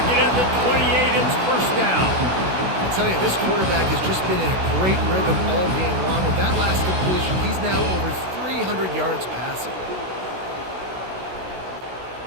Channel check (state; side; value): late; left; 16 ms